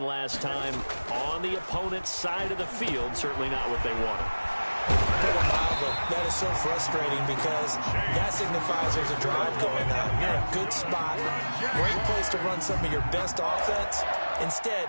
last time on the opponent's side of the field, certainly not what they wanted. That is so frustrating because that signifies there's a drive going on. You're in a good spot, great place to run some of your best offense. Instead,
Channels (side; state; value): both; inverted; correlation -1.00